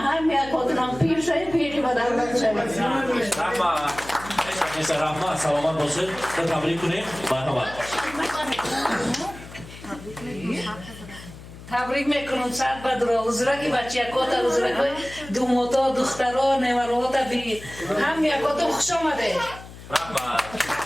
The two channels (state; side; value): noise; left; hum, 16 dB below the sound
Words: یک آدنم پیر شد پیری با دولت شد رحمه سلامت باشید تبریک کنیم. مرحبا. تبریک میکنم صد بدرا حضورت که بچه یکات حضورت که دوماتا دخترها نیمروات بی هم یکات خوش آمده.